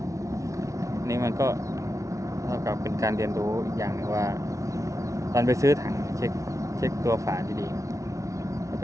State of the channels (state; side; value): late; left; 0.15 ms